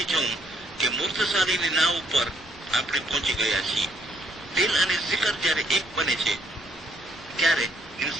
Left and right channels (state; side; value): normal; both; correlation 0.69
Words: જવું કે મૂર્તશાળીની નાવ ઉપર આપણે પહોંચી ગયા છીએ. દિલ અને શિખર જ્યારે એક બને છે ત્યારે